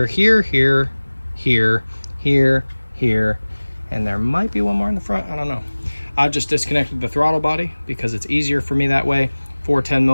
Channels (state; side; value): inverted; both; correlation -1.00